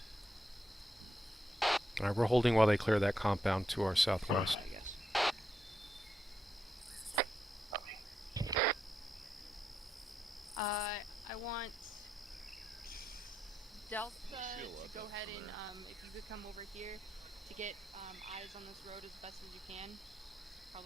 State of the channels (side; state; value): both; normal; correlation 0.82